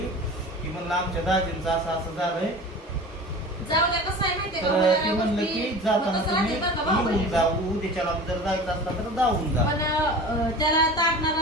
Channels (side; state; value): both; normal; correlation 0.37